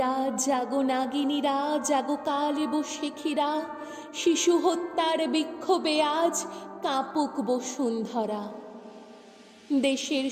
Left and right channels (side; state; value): both; identical; correlation 1.00